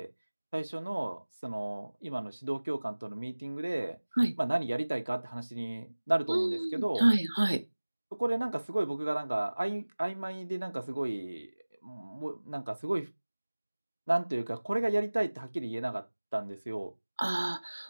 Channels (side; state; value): both; inverted; correlation -1.00